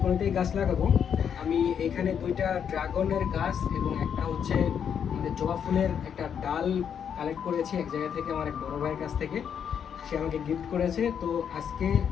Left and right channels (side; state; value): right; quieter; 7.9 dB